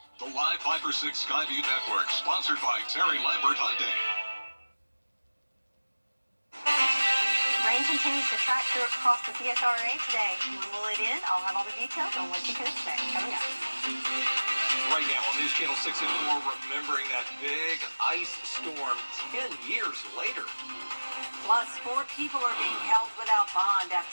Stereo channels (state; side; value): inverted; both; correlation -1.00